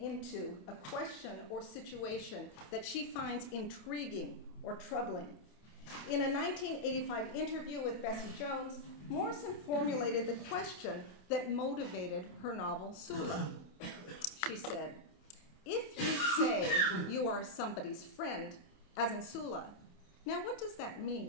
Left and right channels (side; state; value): right; late; 27 ms